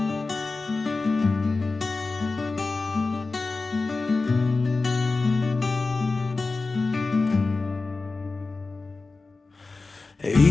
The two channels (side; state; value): right; quieter; 3.7 dB